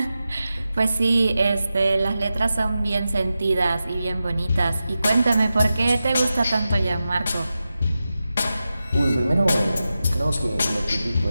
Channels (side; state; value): both; inverted; correlation -0.92